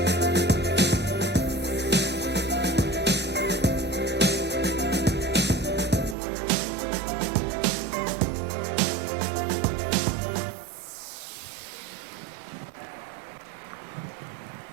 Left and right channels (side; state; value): left; drops out; at 6.2 s